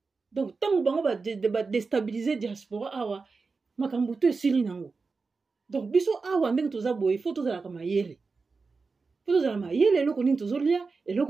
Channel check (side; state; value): left; quieter; 4.4 dB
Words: Donc tant bango ba déstabiliser diaspora awa makambo to esili nango. Donc biso awa ndenge toza boye faut tozala ka mayele. Faut tozala mayele eloko nini tozolia,